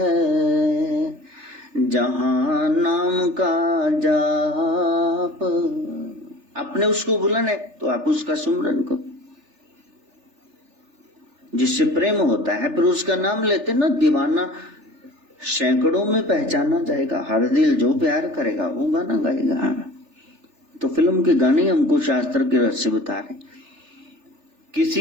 जहाँ नाम का जाप। आपने उसको बुलाना है तो आप उसका सुमरन करो। जिससे प्रेम होता है फिर उसका नाम लेते ना, दीवाना सैकड़ों में पहचाना जाएगा। हर दिल जो प्यार करेगा वो गाना गाएगा। तो फिल्म के गाने हमको शास्त्र के रस से बता रहे,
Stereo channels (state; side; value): late; left; 3.4 ms